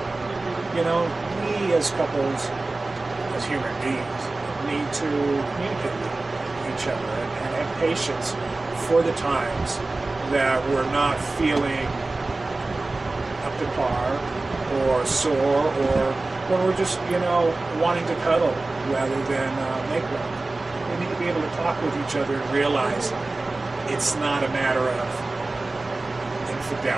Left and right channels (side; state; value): left; quieter; 3.2 dB